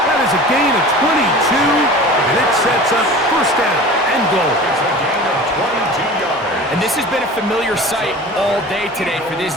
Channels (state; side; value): normal; both; correlation 0.38